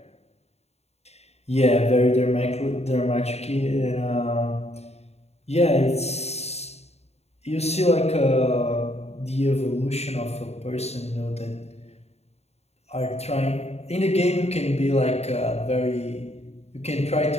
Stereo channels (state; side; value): late; right; 0.31 ms